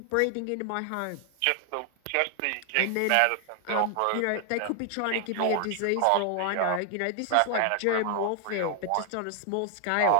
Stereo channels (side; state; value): both; different; correlation 0.00